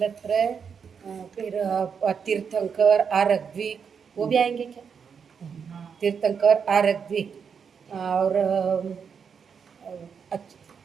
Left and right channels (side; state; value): left; quieter; 6.6 dB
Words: फिर तीर्थंकर, आरग्विक, वो भी आएंगे क्या? तीर्थंकर, आरग्विक और